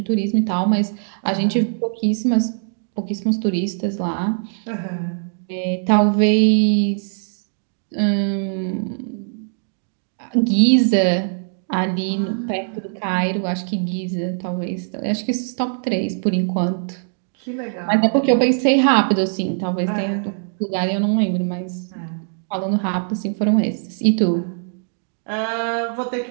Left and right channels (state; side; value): silent; left; digital silence